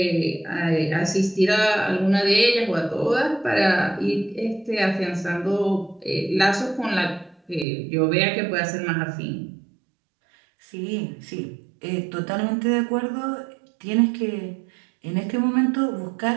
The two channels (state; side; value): drops out; left; at 7.7 s